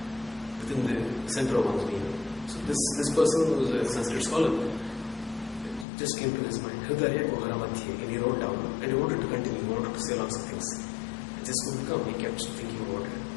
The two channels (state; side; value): drops out; right; at 5.9 s